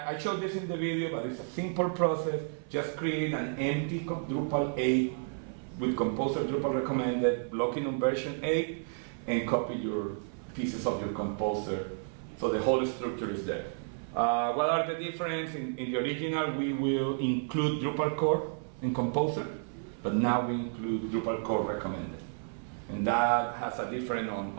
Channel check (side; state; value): left; silent; 57 dB below the other